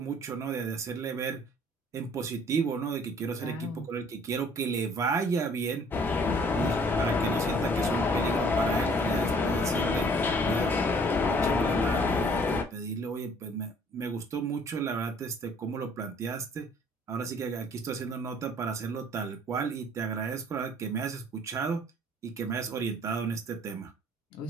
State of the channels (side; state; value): both; normal; correlation 0.57